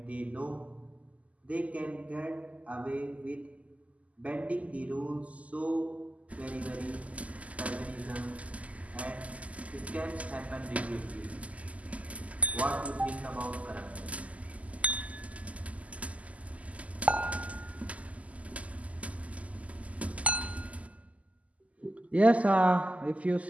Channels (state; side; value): late; left; 0.070 ms